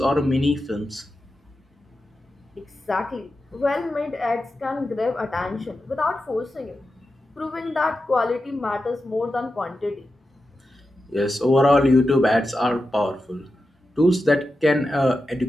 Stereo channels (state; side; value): normal; both; correlation 0.90